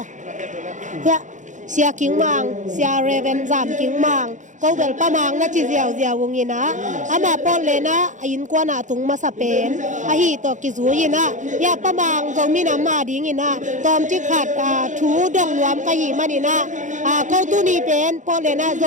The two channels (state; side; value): late; left; 0.36 ms